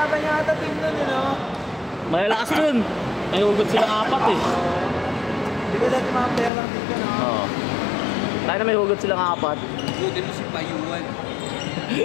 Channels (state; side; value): drops out; right; at 6.5 s